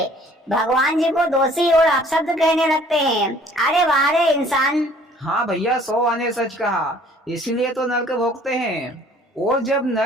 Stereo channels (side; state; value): both; normal; correlation 0.55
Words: भगवान जी को दोषी और अपशब्द कहने लगते हैं। अरे वाह रे इंसान। हाँ भैया, 100 आने सच कहा, इसीलिए तो नरक भोगते हैं। और जब